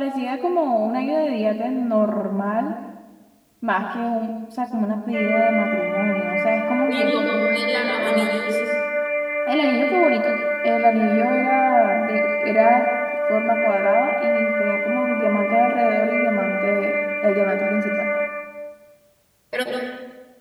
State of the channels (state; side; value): identical; both; correlation 1.00